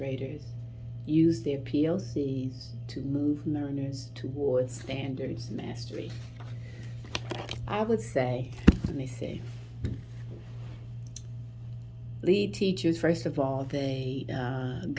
use their PLCs to move learners towards standards mastery? I would say, let me see, lead teachers, first of all, they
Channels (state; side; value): identical; both; correlation 1.00